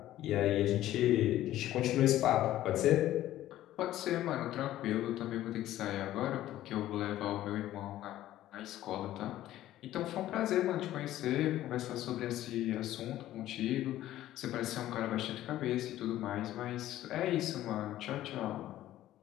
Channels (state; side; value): quieter; right; 13.9 dB